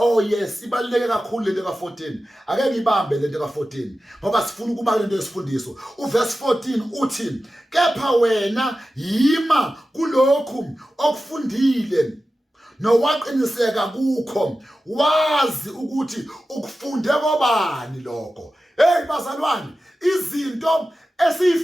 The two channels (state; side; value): normal; both; correlation 0.94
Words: yes ibaluleke kakhulu lento ka14 ake ngibambe lento ka14 ngoba sifuna ukuba lento yesifundiso uverse 14 uthi kepha wena yima kulokhu okufundile nowaqiniseka kukho wazi ukuthi ukufunde kobani lokho hey bazalwane izinto